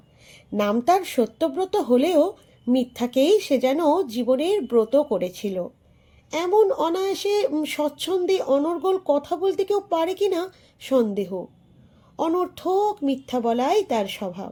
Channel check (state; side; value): identical; both; correlation 1.00